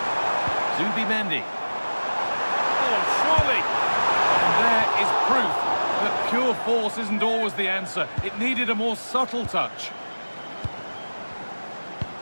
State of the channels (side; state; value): both; inverted; correlation -1.00